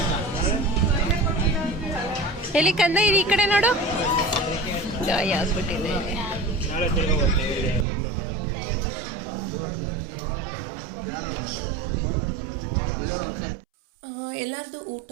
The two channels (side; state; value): left; drops out; at 7.9 s